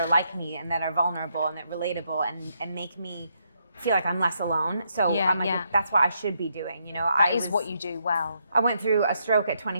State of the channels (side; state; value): both; inverted; correlation -0.77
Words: like me and that are vulnerable and that are relatable and make me feel like I'm less alone. So I'm like, that's what I should be doing. that is what you do well. I went through a stroke at